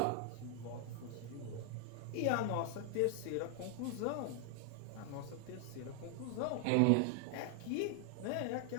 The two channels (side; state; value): both; different; correlation 0.00